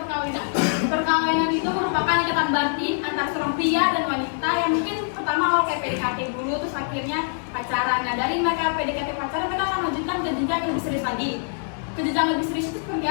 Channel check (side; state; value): right; silent; 62 dB below the other